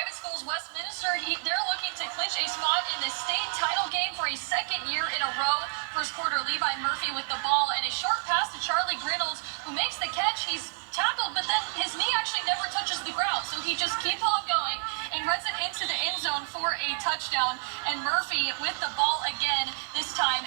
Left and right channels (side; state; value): left; silent; 58 dB below the other